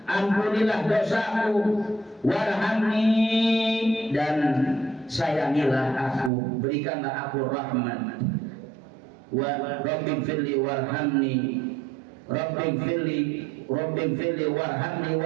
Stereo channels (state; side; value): drops out; left; at 6.3 s